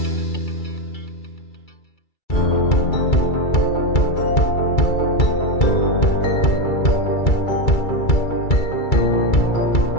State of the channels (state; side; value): late; right; 2.3 ms